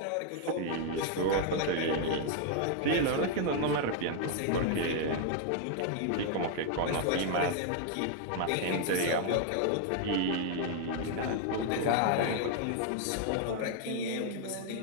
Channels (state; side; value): different; both; correlation 0.00